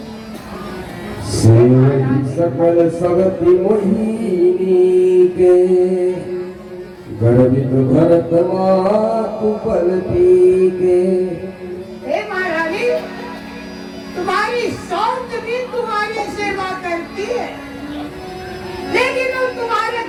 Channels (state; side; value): identical; both; correlation 1.00